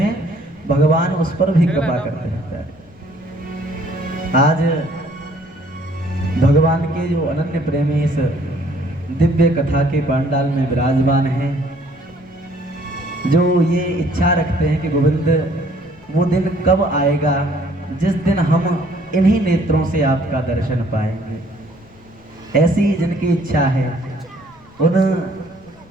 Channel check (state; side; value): noise; left; rumble, 27 dB below the sound